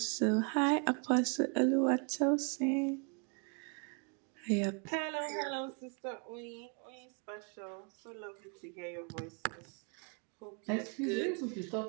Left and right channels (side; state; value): left; quieter; 37.0 dB